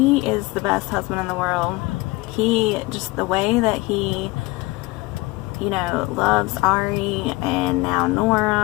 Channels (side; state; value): right; quieter; 22.8 dB